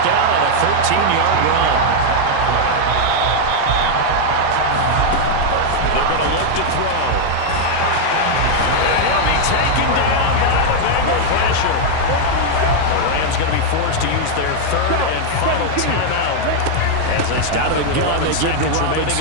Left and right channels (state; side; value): different; both; correlation 0.00